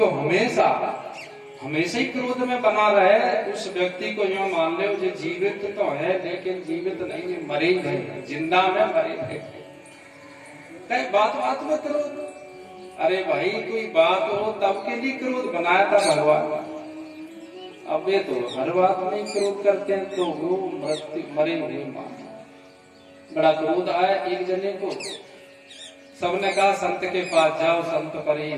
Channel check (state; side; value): identical; both; correlation 1.00